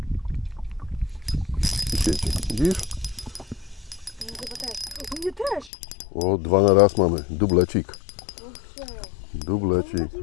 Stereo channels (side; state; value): right; drops out; at 5.7 s